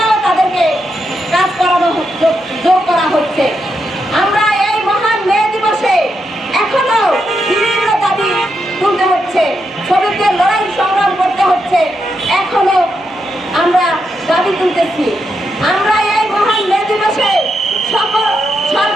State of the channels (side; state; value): both; normal; correlation 0.83